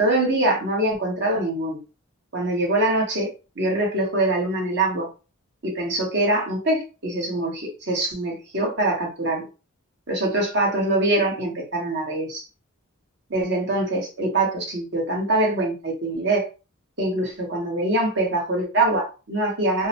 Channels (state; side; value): normal; both; correlation 0.04